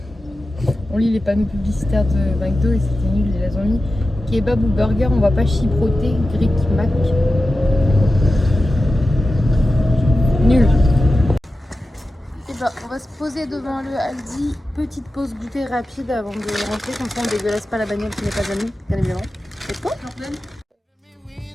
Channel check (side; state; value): both; normal; correlation 0.93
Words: On lit les panneaux publicitaires de McDo et c'était nul, ils les ont mis. Kebab ou burger, on va pas chipoter, Greek Mac. Nul. Et bah, on va se poser devant le Aldi. Petite pause goûter rapide avant de rentrer, comme ça on dégueulasse pas la bagnole qui n'est pas à nous, bien évidemment. Et toi?